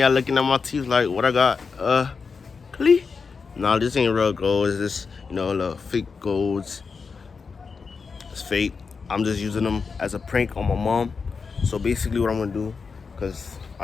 looking at my teeth like what I got. Clee. Nah, this ain't real gold. It's just, little fake golds. It's fake. I'm just using them as a prank on my mom. So basically, what I'm gonna do, cause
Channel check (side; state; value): right; quieter; 5.1 dB